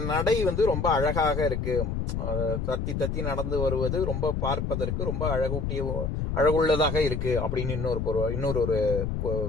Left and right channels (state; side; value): noise; left; rumble, 2 dB below the sound